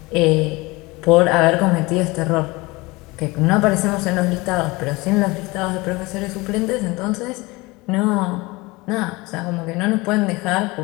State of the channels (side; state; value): right; quieter; 23.1 dB